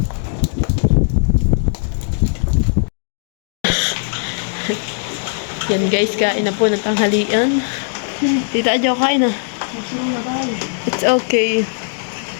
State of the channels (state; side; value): silent; right; digital silence